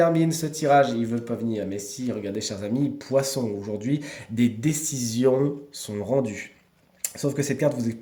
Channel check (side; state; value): both; identical; correlation 1.00